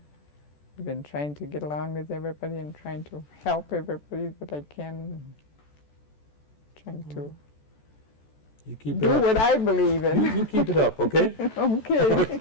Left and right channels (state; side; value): late; right; 14 ms